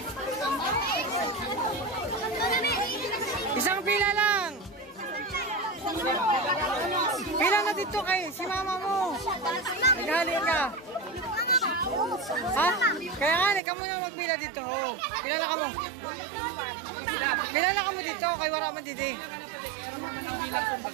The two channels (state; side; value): drops out; left; at 13.6 s